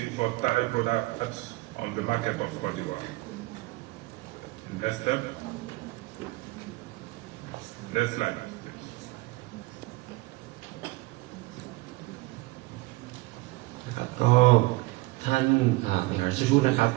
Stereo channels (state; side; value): quieter; left; 21.3 dB